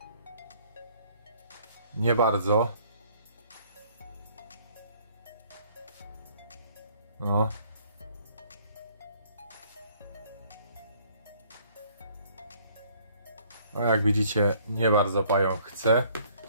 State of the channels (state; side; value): inverted; both; correlation -0.60